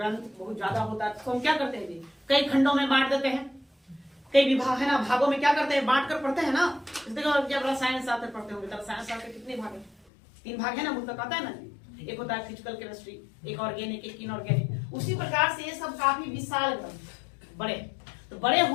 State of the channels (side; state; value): right; drops out; at 10.0 s